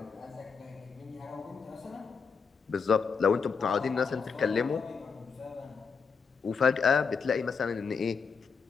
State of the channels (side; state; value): right; quieter; 5.6 dB